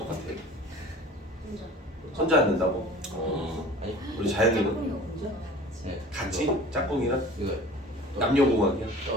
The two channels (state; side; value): normal; both; correlation 0.43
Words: 혼자 앉는다고? 우리 자연이는 같이 짝꿍이랑 남녀공학이야?